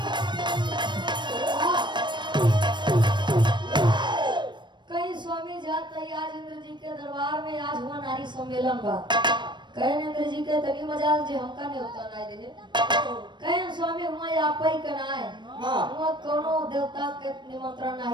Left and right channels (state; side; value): late; left; 0.22 ms